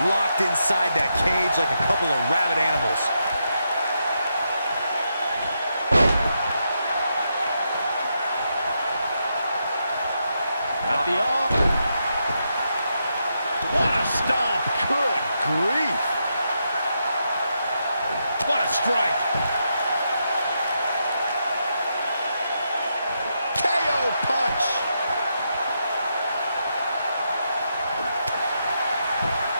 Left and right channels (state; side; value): inverted; both; correlation -0.82